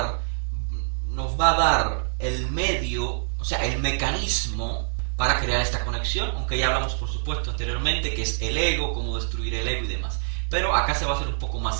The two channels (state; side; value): silent; left; digital silence